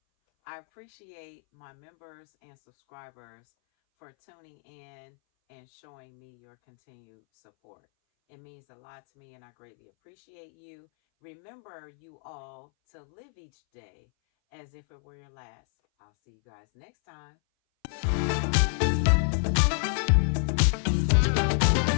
I appreciate my members and subscribers for tuning in and showing me your continued support. It means a lot to me and I greatly appreciate you. Remember, you all, to live each day as if it were your last. I'll see you guys next time.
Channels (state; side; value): silent; right; 59 dB below the other